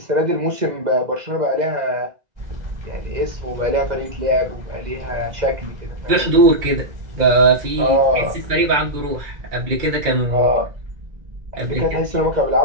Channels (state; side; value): late; left; 2.0 ms